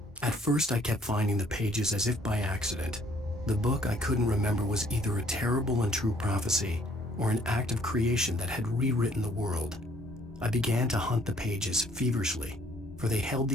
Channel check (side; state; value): both; normal; correlation 0.62